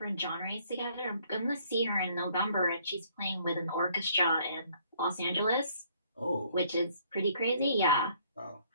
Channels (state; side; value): inverted; both; correlation -0.63